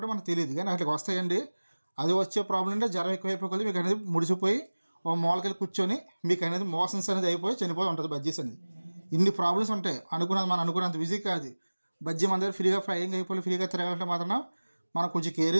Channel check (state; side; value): inverted; both; correlation -1.00